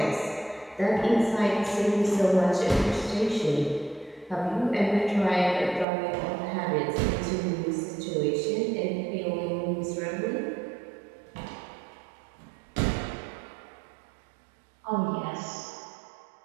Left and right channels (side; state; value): left; drops out; at 5.9 s